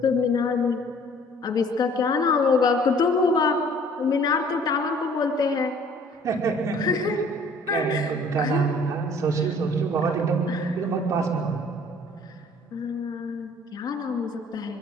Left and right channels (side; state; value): both; normal; correlation 0.54